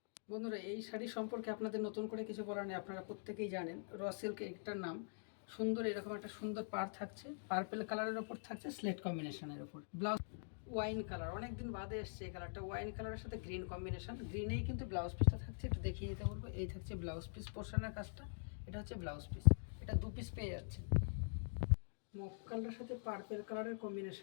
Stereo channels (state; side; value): silent; right; digital silence